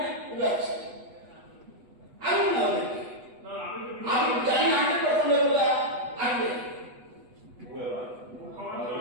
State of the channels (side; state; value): left; late; 8.1 ms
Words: উদাচ্ছি। আমি না আমি জানি না আপনি কখন বলে আসবে,